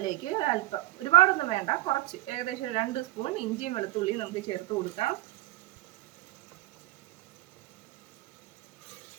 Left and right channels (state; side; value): quieter; left; 17.1 dB